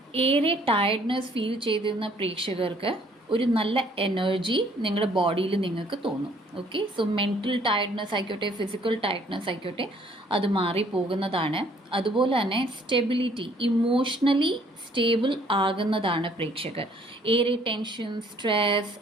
ഏറെ ടയർഡ്നെസ് ഫീൽ ചെയ്തിരുന്ന പ്രേക്ഷകർക്ക് ഒരു നല്ല എനർജി നിങ്ങളുടെ ബോഡിയിൽ നിങ്ങൾക്ക് തോന്നും. ഓക്കെ, സോ മെൻ്റൽ ടയർഡ്നെസ് ആയിക്കോട്ടെ, ഫിസിക്കൽ ടയർഡ്നെസ് ആയിക്കോട്ടെ, അത് മാറിപ്പോകുന്നതാണ്. അതുപോലെ തന്നെ സ്റ്റെബിലിറ്റി, ഇമോഷണലി സ്റ്റേബിൾ ആകുന്നതാണ് പ്രേക്ഷകർ. ഏറെ ടെൻഷൻ, സ്ട്രെസ്,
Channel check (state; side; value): normal; both; correlation 0.61